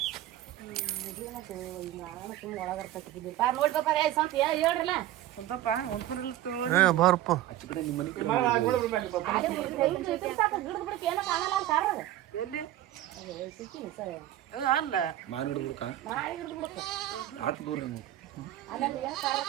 ನೋಡಿ ಬಾಪ ಸಂತ ಹೇಳ್ರಲ್ಲ ಸ್ವಲ್ಪಪ್ಪ ಹೊಂದ್ಕೊಂಡಿಲ್ಲ ಏ ಬಾರಪ್ಪ ಏನೋ ಕಾಣಲ್ಲ ಅಂತ ಕಾರಣ ಎಲ್ಲಿ ಸಿಕ್ಕಿನಿ ಸರ್ ಅಲ್ಲ ಮಾನ್ ಹಿಡ್ಬಿಡ್ಕ ನಾಳೆ ಹಿಡಿದು ಬಿಡುತ್ತೆ ಆಟ ದೂರ ಅಲ್ಲಂದ್ರೆ ಏನು ಕಾರಣ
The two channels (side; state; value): left; quieter; 13.8 dB